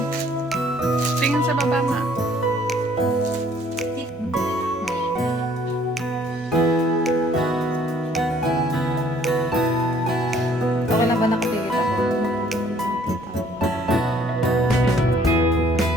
Tingin sa baba, ma. Okay lang ba nakatigit ako?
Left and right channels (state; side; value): normal; both; correlation 0.61